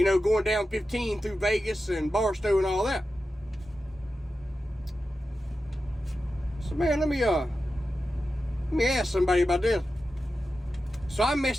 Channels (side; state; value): both; normal; correlation 0.92